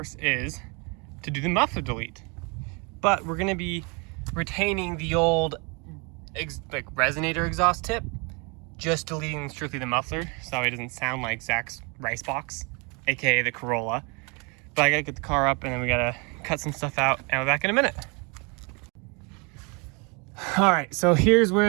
is to do the muffler delete. But we're gonna be retaining the old like resonator exhaust tip, just deleting strictly the muffler, so it doesn't sound like Zach's rice box, aka the Corolla. But I gotta get the car up, and then we gotta cut some stuff out, and we're back in a minute. All right, so here's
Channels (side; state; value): left; quieter; 31.6 dB